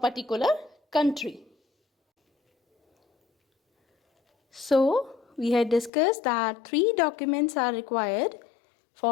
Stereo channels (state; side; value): drops out; right; at 5.9 s